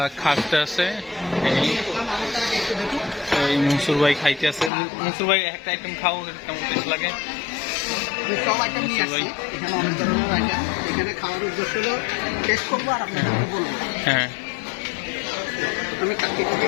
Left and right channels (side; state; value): right; drops out; at 4.7 s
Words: খাটতে আছে। এই মনসুর ভাই খাইতে আছে। মনসুর ভাই একটা আইটেম খাও, কেমন টেস্ট লাগে? সব আইটেম নিয়ে আসছি, এখানে অনেক ধরনের আইটেম। এখানে খাওয়ার উদ্দেশ্য হলো টেস্ট করবো আর আপনাদেরকে বলবো। হ্যাঁ আমি কাকিটা